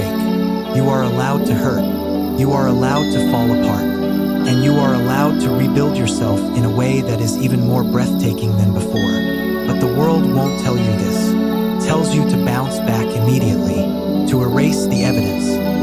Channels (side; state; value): both; identical; correlation 1.00